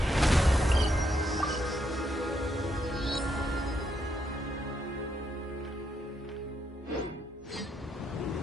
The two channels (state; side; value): normal; both; correlation 0.77